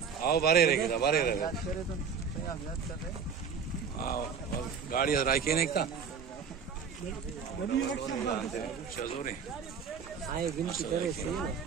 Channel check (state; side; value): quieter; left; 6.4 dB